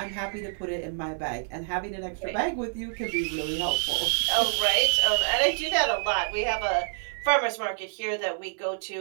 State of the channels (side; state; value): left; silent; 60 dB below the other